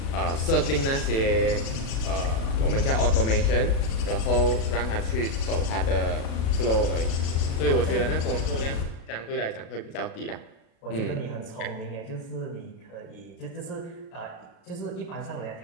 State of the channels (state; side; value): late; right; 36 ms